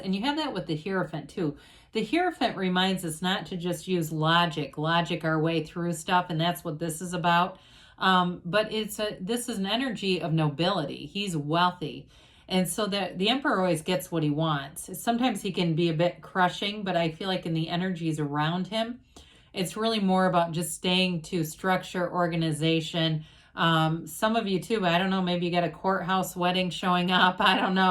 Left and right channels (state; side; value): identical; both; correlation 1.00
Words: you have that with the Hierophant too. The Hierophant reminds us not to just use logic our way through stuff, and that's what this is about. But this is an energy of nobility. He's wealthy. And so the Emperor always gets what he wants. Sometimes he can be a bit crushing, but I feel like in the energies around him, it's really more about just staying to structure, organization. Some of you too, I don't know, maybe you got a courthouse wedding showing up. I don't